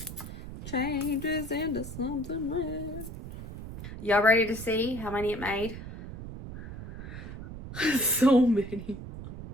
changes into something red. Y'all ready to see how many it made? So many.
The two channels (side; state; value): right; noise; rumble, 11 dB below the sound